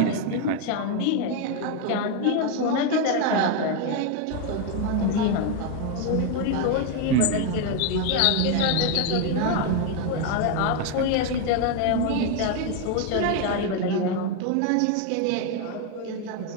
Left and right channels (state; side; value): different; both; correlation 0.01